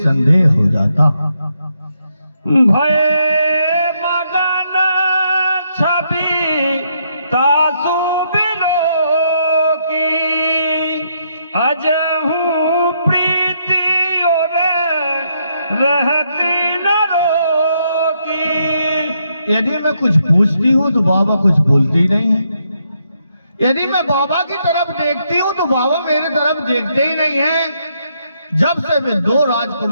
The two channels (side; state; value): both; inverted; correlation -0.76